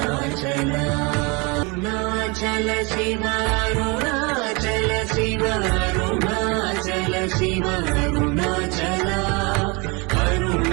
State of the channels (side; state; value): left; quieter; 28.9 dB